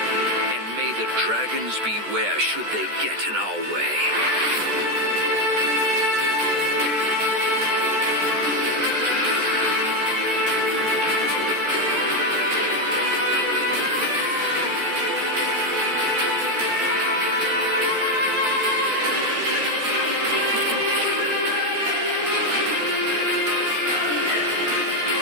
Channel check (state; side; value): late; left; 14 ms